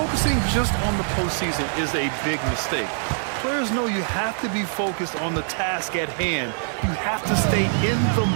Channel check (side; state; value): left; silent; 63 dB below the other